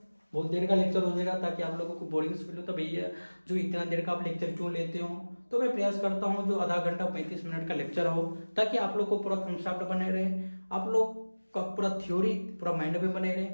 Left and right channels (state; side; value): inverted; both; correlation -1.00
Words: बहुत देर का लेक्चर हो जाएगा ताकि आप लोगों को बोरिंग फील हो, तो भैया जो इतना देर का आप लेक्चर क्यों लेते हो, तो मैं प्रयास करता हूँ जो आधा घंटा 35 मिनट का लेक्चर हो, ताकि आप लोग को पूरा कंसेप्ट बने रहे, आप लोग का पूरा थ्योरी पूरा माइंड में बने रहे।